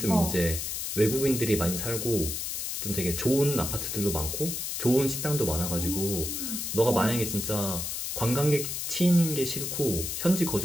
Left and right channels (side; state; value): left; noise; hiss, 3 dB below the sound